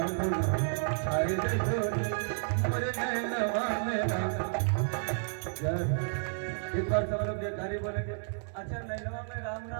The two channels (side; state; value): left; silent; 57 dB below the other